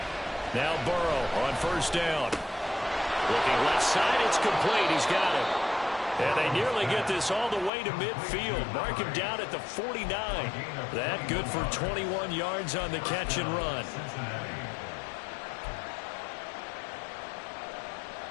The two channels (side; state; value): right; drops out; at 7.7 s